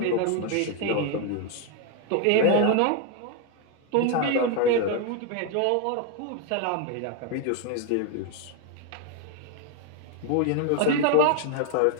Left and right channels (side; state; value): both; different; correlation 0.01